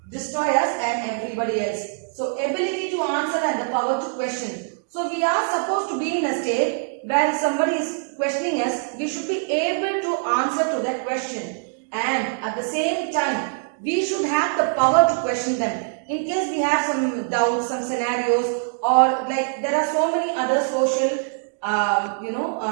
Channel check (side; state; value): left; silent; digital silence